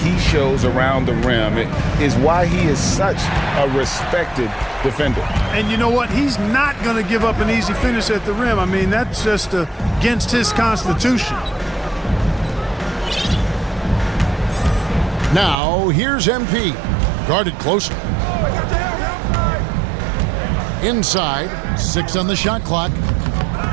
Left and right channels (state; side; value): drops out; left; at 15.6 s